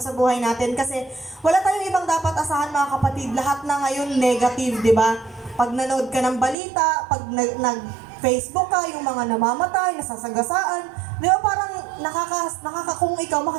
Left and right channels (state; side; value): drops out; left; at 6.6 s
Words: sa buhay natin. Kasi wala tayong ibang dapat asahan mga kapatid. Lahat na ngayon negative, di ba? Pag nanood ka ng balita, pag nag-Facebook ka, yung mga namamatay, nasasagasaan, di ba parang kung ikaw